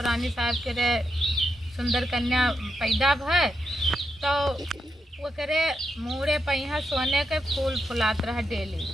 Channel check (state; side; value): normal; both; correlation 0.84